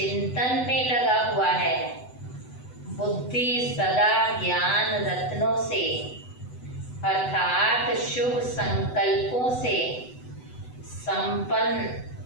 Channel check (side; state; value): right; late; 8.0 ms